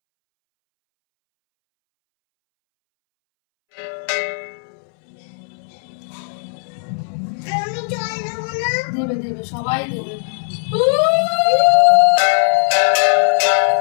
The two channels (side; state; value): right; silent; 67 dB below the other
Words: দেবে দেবে, সবাই দেবে।